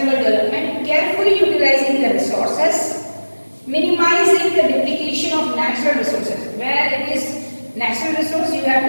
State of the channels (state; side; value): inverted; both; correlation -1.00